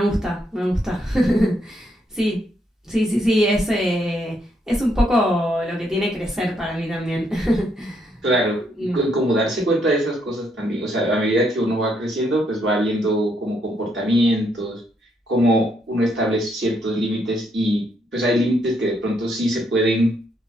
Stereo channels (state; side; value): normal; both; correlation 0.75